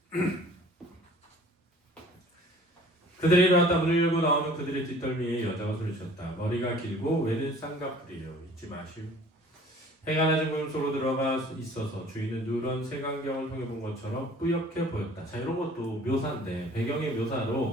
그들이 일어났다. 문을 열고 나오면 그들의 뒷덜미에 여자가 소리쳤다. 머리가 길고 외는 쌍꺼풀이요. 잊지 마시오. 해가 낮은 구름 속으로 들어가 있어서 주인은 누런 색안경을 통해 본 것처럼 뿌옇게 보였다. 자, 이런 것도 묘사인데 배경의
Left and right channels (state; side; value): normal; both; correlation 0.50